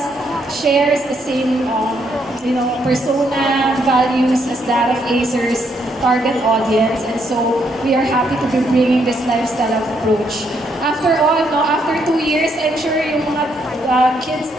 shares the same persona, values as that of Acer's target audience, and so we are happy to be bringing this lifestyle approach. After all, after 2 years, I'm sure yung mga kids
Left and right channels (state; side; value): normal; both; correlation 0.74